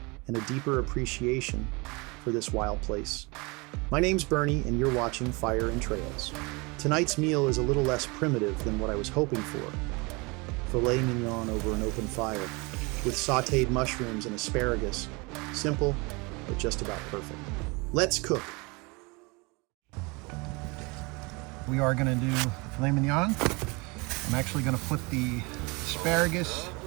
and a deeper appreciation for this wild place. My name's Bernie, and you're watching Fire and Trails. Tonight's meal is a little less primitive than what I was hoping for. Filet Mignon over an open fire, with sautéed mushrooms and asparagus. Simple, but just about perfect. Let's cook. We are going to do filet mignon. I'm actually going to put the asparagus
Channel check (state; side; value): quieter; left; 27.4 dB